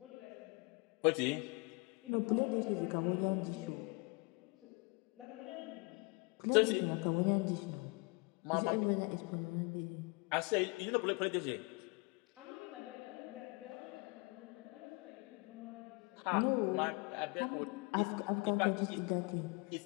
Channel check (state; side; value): quieter; right; 29.8 dB